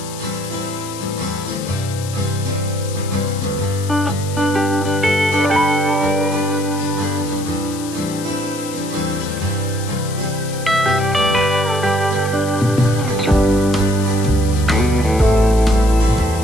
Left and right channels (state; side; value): noise; left; hiss, 13 dB below the sound